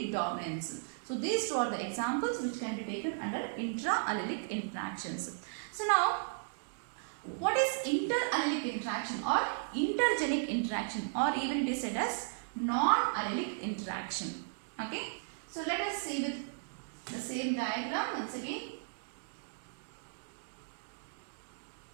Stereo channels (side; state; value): left; silent; digital silence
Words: dominance. So these two are the examples which can be taken under intra-allelic interactions. So now, what is inter-allelic interaction or intergenic interaction, or even it is said as non-allelic interaction? Okay. So let us see with the same diagram once again.